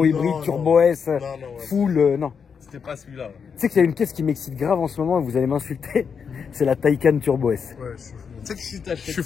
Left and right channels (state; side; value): quieter; right; 6.4 dB